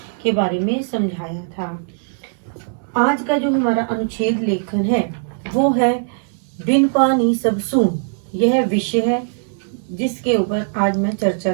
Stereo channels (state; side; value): silent; left; 65 dB below the other